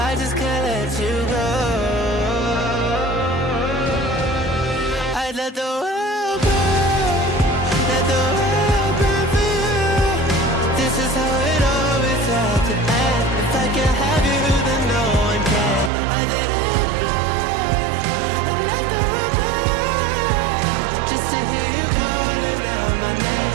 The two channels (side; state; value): left; drops out; at 15.9 s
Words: I just can't let you go. I'd let the world burn, let the world burn for you. This is how it always had to end. If I can't have you, then no one can. I'd let it burn, and let the world burn, just to hear you calling out my